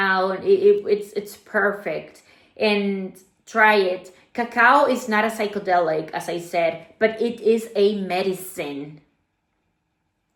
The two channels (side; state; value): both; identical; correlation 1.00